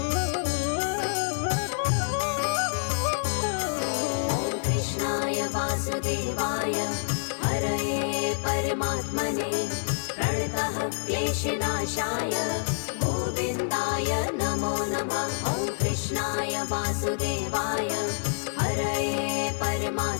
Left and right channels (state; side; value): silent; right; 60 dB below the other